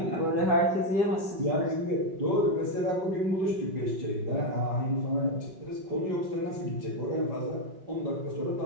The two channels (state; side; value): late; left; 5.3 ms